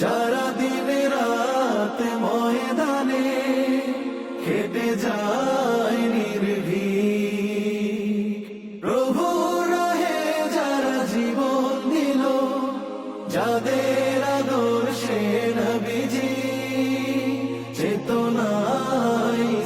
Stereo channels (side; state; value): both; identical; correlation 1.00